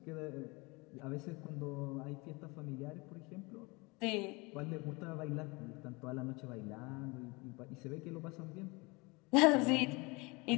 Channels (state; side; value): quieter; right; 26.3 dB